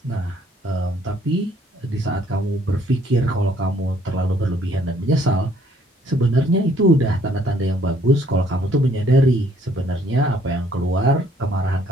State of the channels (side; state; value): both; normal; correlation 0.63